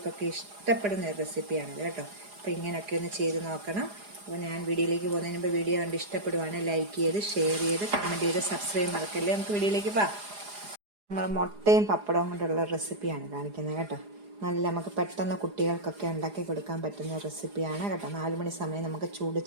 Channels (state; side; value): late; left; 4.9 ms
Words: ഇഷ്ടപ്പെടുന്ന ഒരു റെസിപ്പിയാണിത് കേട്ടോ. അപ്പോൾ ഇങ്ങനെയൊക്കെ ഒന്ന് ചെയ്ത് നോക്കണം. അപ്പോൾ ഞാൻ വീഡിയോയിലേക്ക് പോകുന്നതിന് മുമ്പ് വീഡിയോ കണ്ട് ഇഷ്ടപ്പെടുവാണ് ലൈക്ക് ചെയ്ത്, ഷെയർ ചെയ്ത്, കമൻറ്റ് ചെയ്ത്, സബ്സ്ക്രൈബ് മറക്കല്ലേ. നമുക്ക് വീഡിയോയിലേക്ക് പോകാം. നമ്മൾ മുട്ടയും പപ്പടവും കൊണ്ടുള്ള റെസിപ്പിയാണ് കാണിക്കുന്നത് കേട്ടോ. നമുക്ക് പെട്ടെന്ന് കുട്ടികൾക്കൊക്കെ ഉണ്ടാക്കി കൊടുക്കാൻ പറ്റുന്ന റെസിപ്പിയാണ് കേട്ടോ. 4 മണി സമയം നമുക്ക് ചൂട്